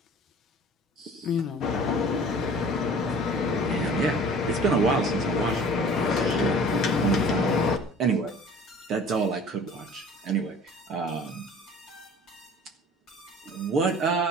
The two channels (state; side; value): normal; both; correlation 0.46